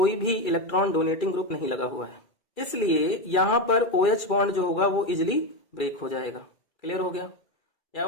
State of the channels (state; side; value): late; right; 2.3 ms